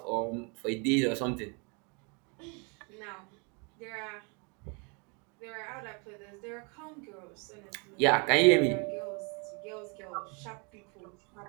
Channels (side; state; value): left; quieter; 33.6 dB